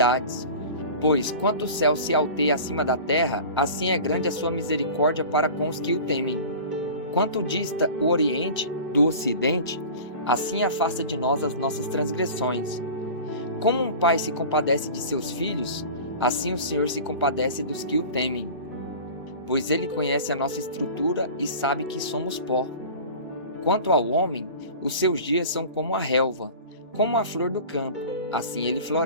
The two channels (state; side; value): inverted; both; correlation -0.38